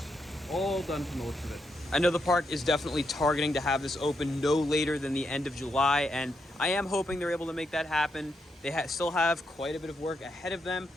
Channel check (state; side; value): normal; both; correlation 0.81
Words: all done from the looks of it. I know the park is definitely targeting to have this open no later than the end of July, and I am hoping they're able to make that happen. They still have quite a bit of work ahead of them.